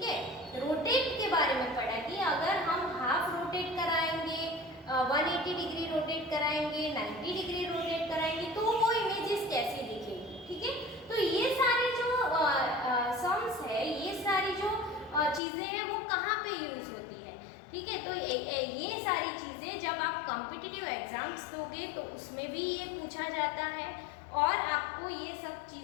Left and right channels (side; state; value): right; drops out; at 15.4 s